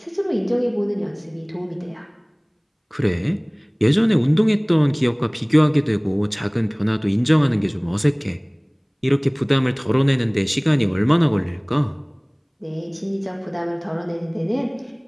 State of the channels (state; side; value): identical; both; correlation 1.00